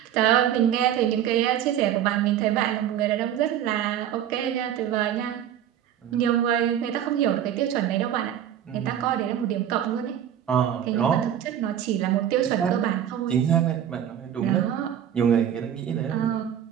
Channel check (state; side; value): quieter; left; 10.2 dB